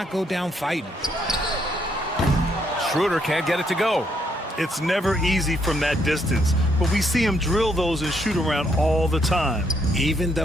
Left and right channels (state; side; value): normal; both; correlation 0.73